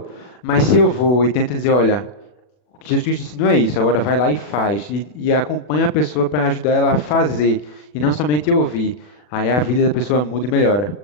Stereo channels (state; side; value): late; right; 40 ms